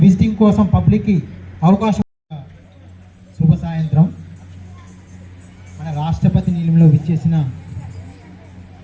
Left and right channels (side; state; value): both; identical; correlation 1.00